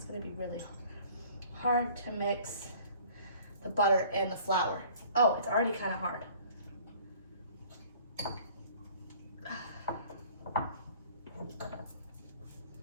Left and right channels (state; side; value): inverted; both; correlation -0.51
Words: gonna be really hard to mix the butter and the flour. Oh, it's already kind of hard.